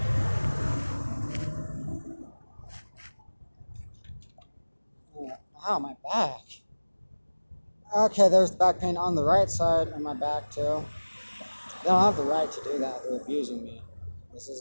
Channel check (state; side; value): inverted; both; correlation -1.00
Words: Ow, my back. Okay, there's the back pain on the right side of my back too. They don't have the right to do that. They're abusing me. This is